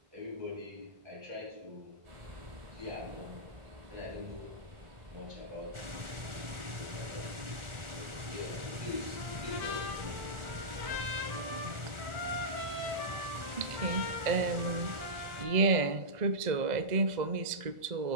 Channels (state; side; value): late; left; 1.4 ms